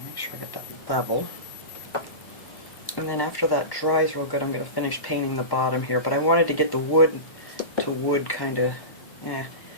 make sure I get that level. And then after that dries real good, I'm going to finish painting the bottom here. But I wanted to get the wood to wood kind of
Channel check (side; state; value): right; late; 1.1 ms